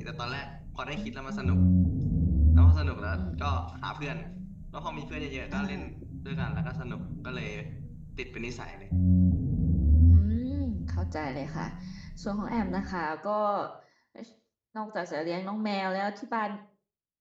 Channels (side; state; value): both; identical; correlation 1.00